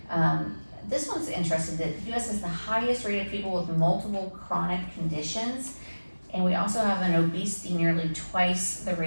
This one's interesting, that the US has the highest rate of people with multiple chronic conditions, and we also have an obesity nearly twice the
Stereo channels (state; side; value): inverted; both; correlation -1.00